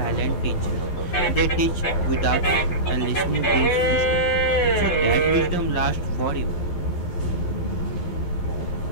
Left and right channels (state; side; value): late; right; 12 ms